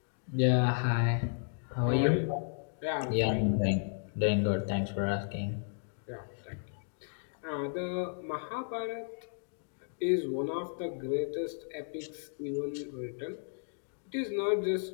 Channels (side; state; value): right; silent; digital silence